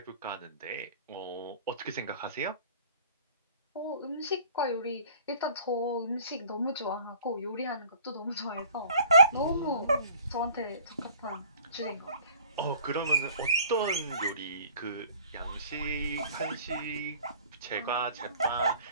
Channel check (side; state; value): both; inverted; correlation -0.50